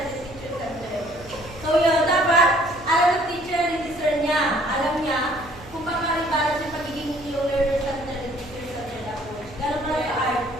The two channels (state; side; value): noise; right; hum, 19 dB below the sound